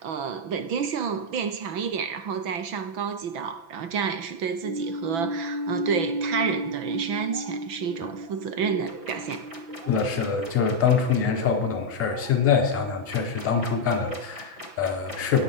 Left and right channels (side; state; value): left; late; 6.0 ms